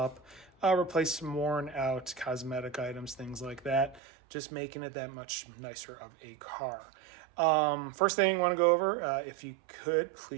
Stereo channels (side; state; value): left; drops out; at 4.0 s